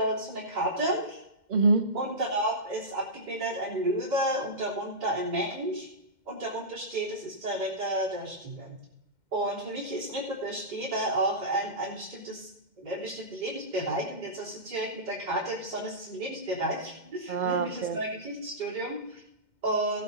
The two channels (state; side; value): late; left; 2.1 ms